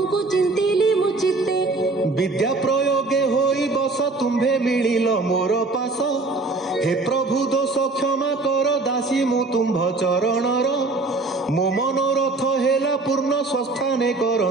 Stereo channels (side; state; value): left; quieter; 3.4 dB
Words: ଚିନ୍ତିଲି ମୁଁ ଚିତ୍ତେ। ବିଦ୍ୟା ପ୍ରୟୋଗେ ହୋଇ ବସ, ତୁମ୍ଭେ ମିଳିଲ ମୋର ପାଶ। ହେ ପ୍ରଭୁ ଦୋଷ କ୍ଷମା କର, ଦାସୀ ମୁଁ ତୁମ୍ଭ ଚରଣର। ମୋ ମନୋରଥ ହେଲା ପୂର୍ଣ୍ଣ, ସ୍ୱସ୍ଥାନେ